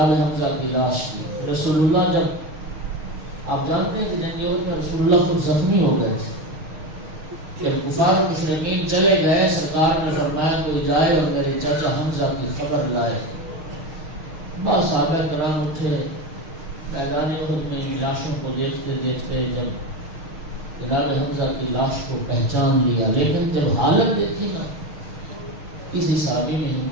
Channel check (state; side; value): late; left; 6.4 ms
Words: حمزہ کی لاش کی۔ رسول اللہ جب آپ جانتے ہیں کہ جنگیوں میں رسول اللہ خود زخمی ہو گئے تھے، پھر کفار مشرکین چلے گئے، سرکار نے فرمایا کوئی جائے اور میرے چاچا حمزہ کی خبر لائے۔ بس صحابہ کرام اٹھے، میدان احد میں لاشوں کو دیکھتے دیکھتے جب جناب حمزہ کی لاش کو پہچان لیا، لیکن جب حالت دیکھی نا کسی صحابی میں